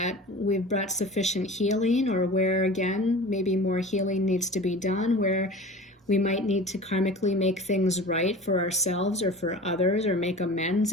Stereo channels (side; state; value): both; normal; correlation 0.37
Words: we've brought sufficient healing, or where, again, maybe more healing needs to be done, where we might need to karmically make things right for ourselves or for others, or make amends